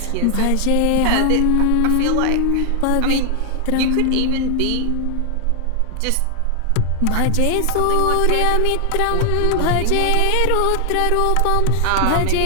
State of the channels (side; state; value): both; different; correlation 0.00